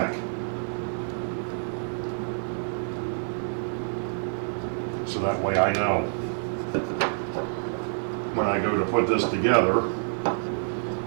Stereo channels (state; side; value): silent; left; 60 dB below the other